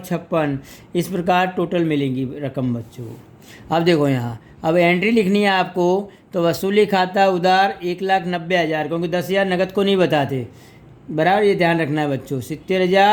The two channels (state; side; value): identical; both; correlation 1.00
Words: 56। इस प्रकार टोटल मिलेंगी रकम बच्चों। अब देखो यहाँ, अब एंट्री लिखनी है आपको, तो वसूली खाता उधार 1,90,000, क्योंकि 10,000 नकद को नहीं बताते, बराबर ये ध्यान रखना है बच्चों।